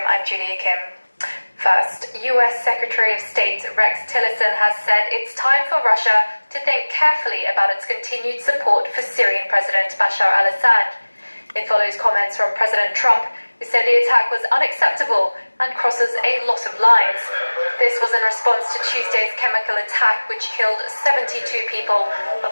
I'm Julia Kim. First, US Secretary of State Rex Tillerson has said it's time for Russia to think carefully about its continued support for Syrian President Bashar al-Assad. It follows comments from President Trump, who said the attack was unacceptable and crosses a lot of lines. This was in response to Tuesday's chemical attack, which killed 72 people,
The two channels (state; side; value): inverted; both; correlation -1.00